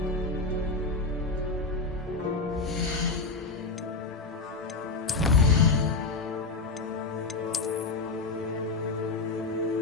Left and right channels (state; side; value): quieter; right; 3.8 dB